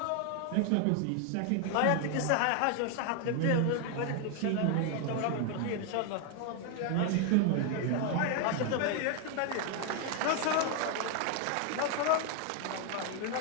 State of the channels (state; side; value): different; both; correlation 0.00